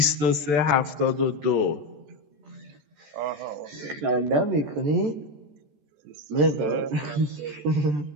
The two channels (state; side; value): late; left; 14 ms